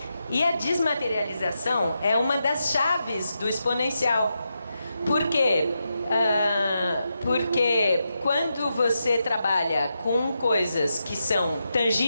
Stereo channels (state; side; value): inverted; both; correlation -0.86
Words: E a desmaterialização é uma das chaves do exponencial. Por quê? Porque quando você trabalha com coisas que são